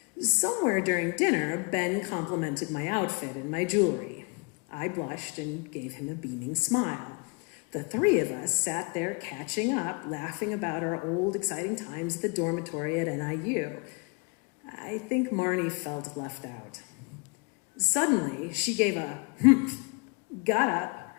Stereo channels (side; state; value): right; quieter; 31.3 dB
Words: Somewhere during dinner, Ben complimented my outfit and my jewelry. I blushed and gave him a beaming smile. The three of us sat there catching up, laughing about our old, exciting times at the dormitory at NIU. I think Marnie felt left out. Suddenly, she gave a humph, got up,